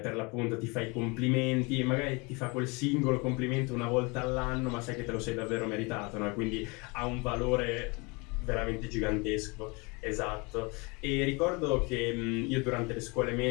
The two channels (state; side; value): quieter; right; 28.2 dB